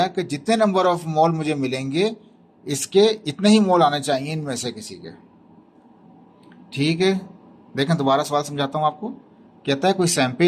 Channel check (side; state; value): both; identical; correlation 1.00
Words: कि जितने नंबर ऑफ मोल मुझे मिलेंगे इसके इतने ही मोल आने चाहिए इनमें से किसी के। ठीक है, देखें दोबारा सवाल समझाता हूँ आपको। कहता है कोई